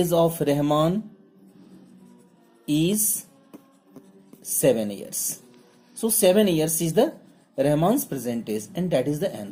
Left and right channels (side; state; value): both; identical; correlation 1.00